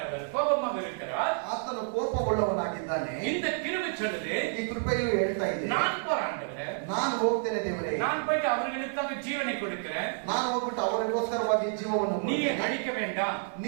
அவர் கோபமாக இருக்கிறார். ಆತನು ಕೋಪವುಳ್ಳವನಾಗಿದ್ದಾನೆ. இந்த கிருபை சொல்லுது, ಈ ಕೃಪೆಯು ಹೇಳ್ತಾ ಇದೆ, நான் போராண்டவரே, ನಾನು ಹೋಗ್ತೇನೆ ದೇವರೇ, நான் போயிட்டு அவர்களுக்காக ஜீவனை கொடுக்கிறேன், ನಾನು ಹೋಗ್ಬಿಟ್ಟು ಅವರಿಗೋಸ್ಕರವಾಗಿ ಜೀವವನ್ನು நீ ಕೊಡ್ತೇನೆ. அழிக்க வேண்டாம்.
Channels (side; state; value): left; silent; 58 dB below the other